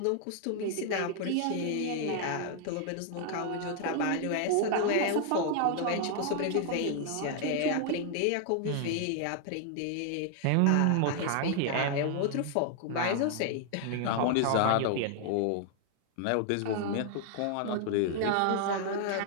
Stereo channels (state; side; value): different; both; correlation 0.00